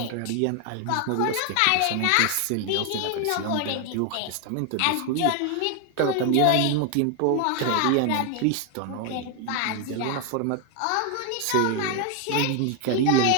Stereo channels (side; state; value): both; different; correlation 0.01